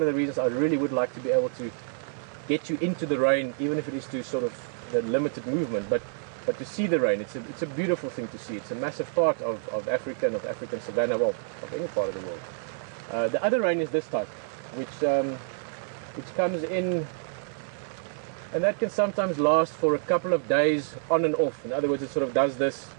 of the reasons I really would like to be able to get you into the rain, even if it is to sort of the limited movement, but to see the rain, it's a beautiful thing to see. It's a massive part of Africa and of African savanna, well, of any part of the world. The other rain is this type, which comes in, and that can sometimes last for a couple of days on and off. In other words, it sort of does this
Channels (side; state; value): left; silent; 59 dB below the other